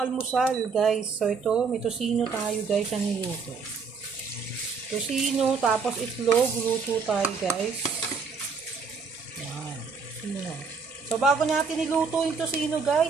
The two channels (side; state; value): left; quieter; 5.2 dB